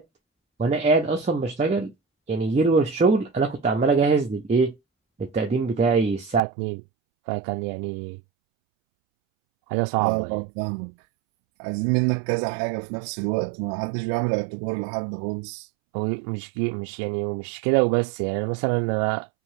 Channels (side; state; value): left; drops out; at 6.4 s